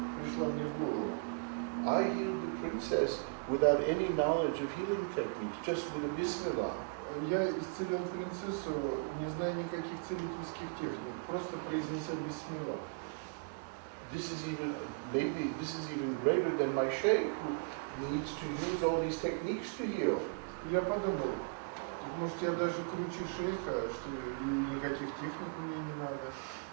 пришла мне в голову. I healed the princess without any knowledge of healing techniques, just with a bismillah. Я исцелил принцессу, не зная никаких целительских техник, просто произнеся бисмилlah. This is even greater than my sheikh who needs to use all these techniques to heal. И я подумал, может я даже круче шейха, что и никаких техник мне не надо.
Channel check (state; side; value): quieter; left; 36.2 dB